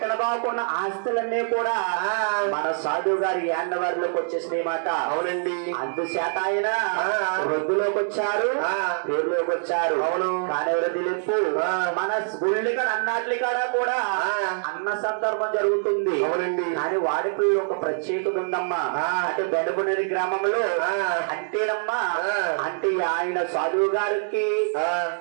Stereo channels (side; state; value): left; silent; 62 dB below the other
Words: బాగున్న ఆస్తులన్నీ కూడా మన సాధువు గారి యాండవారిలోకి వచ్చేసినాయి మాట. అవునండి. అందుచేత ఆయన వృద్ధులోకి వచ్చారు, పేరులోకి వచ్చారు. అవును. కానీ వృద్ధి లెప్పు మన గుళ్ళి కాడ అన్నట్లి కాడ కూడా అన్న సందర్భం జరుగుతుంది. అవునండి. కానీ వాడికి ఒక ప్రత్యేకత ఉందమ్మా. అంటే బెండపునేని గ్రామంలో అంటేనమ్మా అంటే ఆయన సాధువు గారికి